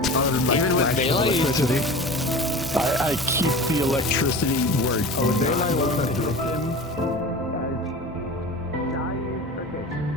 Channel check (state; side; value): normal; both; correlation 0.35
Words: Other than like Even with flashes of daylight? electricity. I keep the electricity where it Oh, does not daylight go wasn't to good. him.